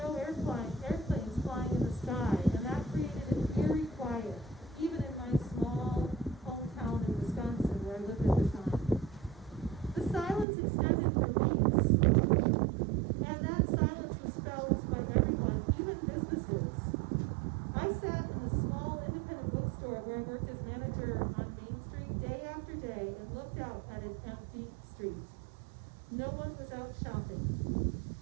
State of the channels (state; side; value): drops out; left; at 10.5 s